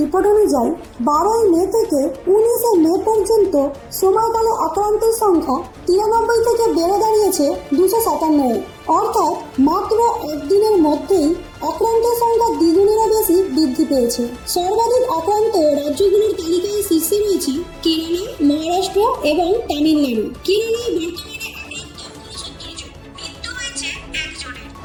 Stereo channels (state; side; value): identical; both; correlation 1.00